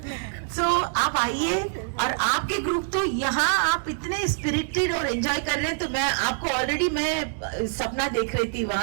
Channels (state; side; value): silent; left; 62 dB below the other